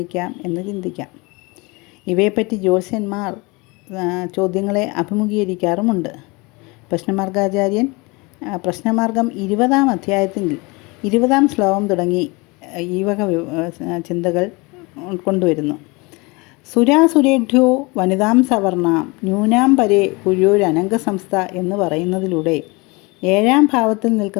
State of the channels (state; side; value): quieter; right; 26.4 dB